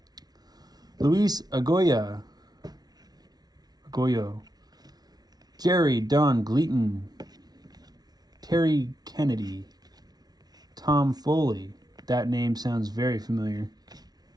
Luis Agoyo, Jerry Don Gleaton, Terry Kennedy, Tom Foley. That name sounds very familiar.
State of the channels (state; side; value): late; left; 0.19 ms